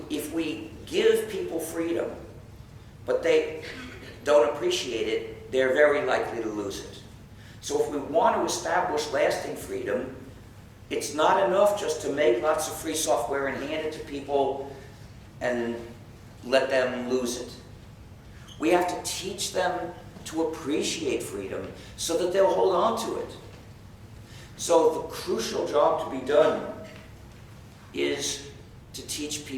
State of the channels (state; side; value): identical; both; correlation 1.00